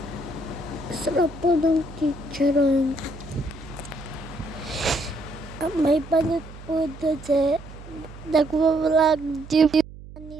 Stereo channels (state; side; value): noise; right; hum, 16 dB below the sound